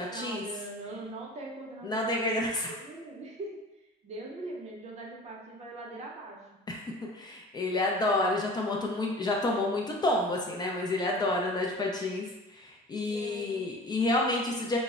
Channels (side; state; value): both; normal; correlation 0.41